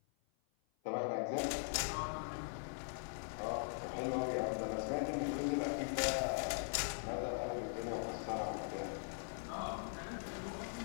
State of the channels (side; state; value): right; silent; 50 dB below the other